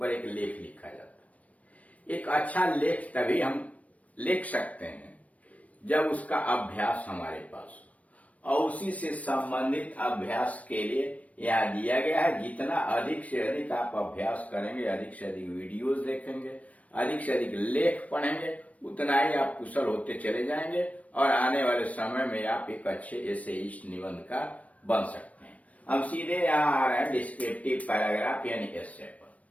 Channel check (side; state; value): right; late; 0.067 ms